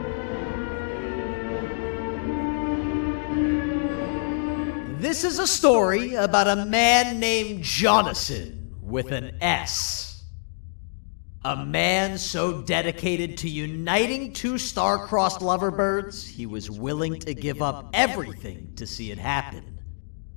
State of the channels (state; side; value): silent; right; digital silence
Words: This is a story about a man named Jonathan with an S. A man so dedicated to uniting two star-crossed loverbirds, he was willing to give up everything to see it happen.